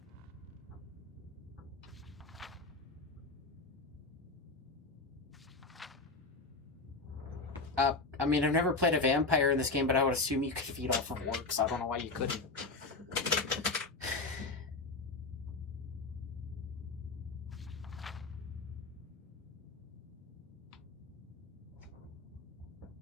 I mean, I've never played a vampire in this game, but I would assume you could feed off of orcs. I don't know why you couldn't.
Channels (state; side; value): quieter; right; 3.7 dB